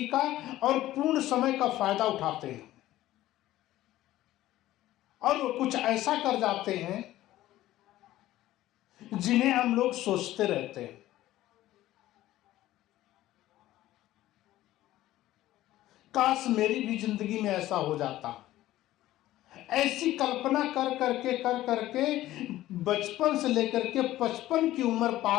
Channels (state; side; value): quieter; right; 15.0 dB